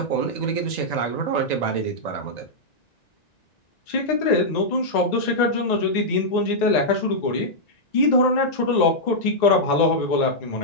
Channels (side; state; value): right; late; 1.9 ms